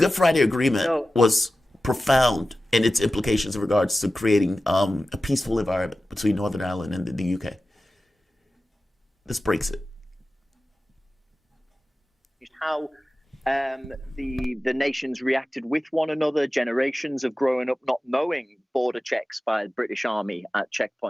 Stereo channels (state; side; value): normal; both; correlation 0.95